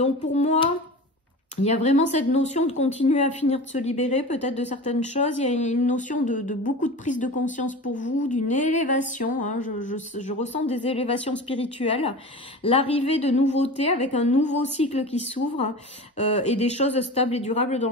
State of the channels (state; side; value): normal; both; correlation 0.33